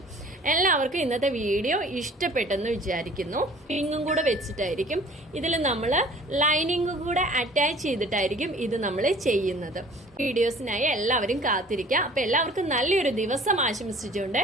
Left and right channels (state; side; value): normal; both; correlation 0.50